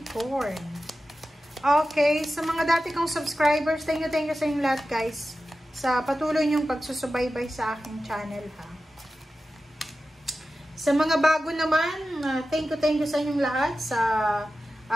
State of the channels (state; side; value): normal; both; correlation 0.93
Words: Okay, sa mga dati kong subscribers, thank you sa inyong lahat guys sa patuloy niyong pagsusubaybay sa aking channel ha. Sa mga bago naman, thank you sa inyong lahat sa